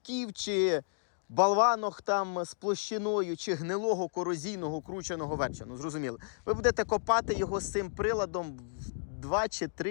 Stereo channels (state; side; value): silent; right; digital silence